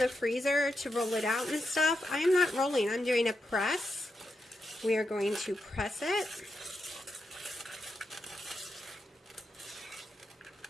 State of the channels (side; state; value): both; normal; correlation 0.85